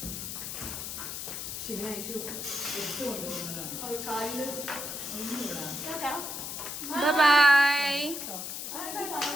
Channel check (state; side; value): noise; left; hiss, 6 dB below the sound